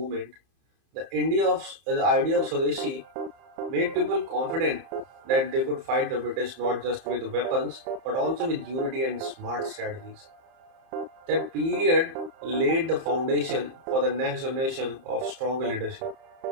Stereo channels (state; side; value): late; left; 30 ms